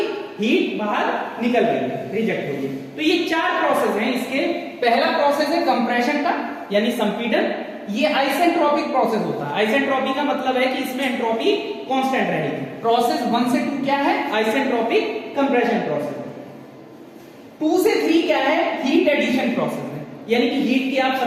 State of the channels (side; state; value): both; identical; correlation 1.00